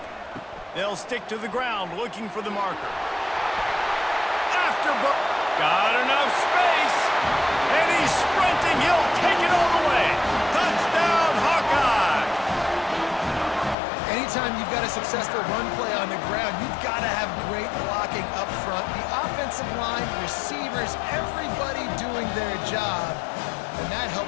They'll stick to the ground looking for the marker. Got enough space. And he's sprinting. He'll take it all the way. Touchdown, Hawkeye. Anytime you've got a successful run play on the ground, you've got to have great blocking up front. The offensive line, receivers, everybody doing their job. And that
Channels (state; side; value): drops out; right; at 13.8 s